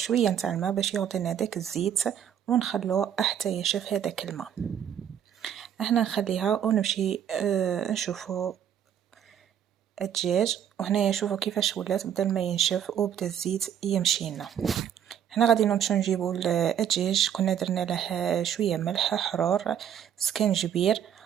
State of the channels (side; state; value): left; quieter; 9.4 dB